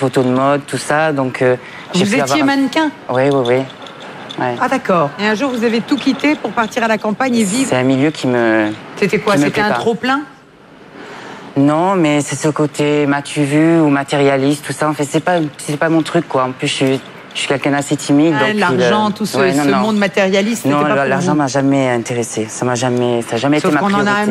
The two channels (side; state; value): both; identical; correlation 1.00